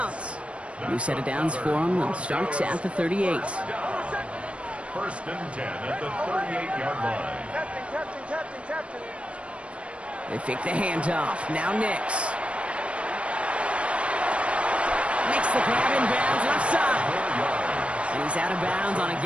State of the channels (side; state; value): left; late; 0.061 ms